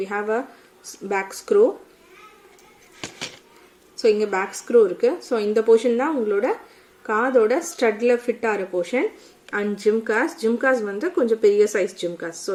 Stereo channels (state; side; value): identical; both; correlation 1.00